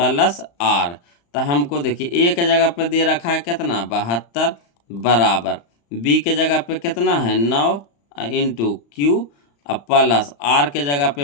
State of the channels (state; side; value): late; right; 35 ms